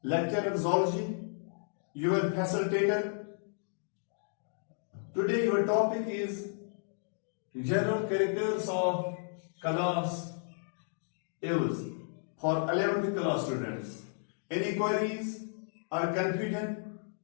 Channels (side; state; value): right; silent; digital silence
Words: lecturer in zoology, your facilitator. Today, your topic is general characters of class Aves for 11th class students. Any queries or confusion?